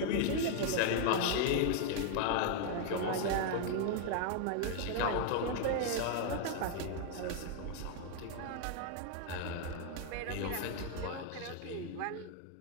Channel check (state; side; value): different; both; correlation 0.00